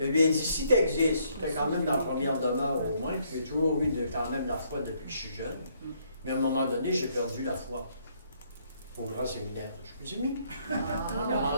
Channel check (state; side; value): inverted; both; correlation -0.69